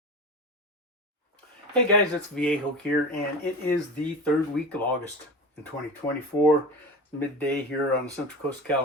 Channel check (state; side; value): normal; both; correlation 0.31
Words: guys, it's Viejo here, and it is the third week of August in 2024. Midday here on the Central Coast of